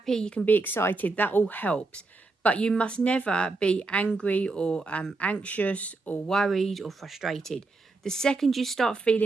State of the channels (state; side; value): quieter; left; 3.6 dB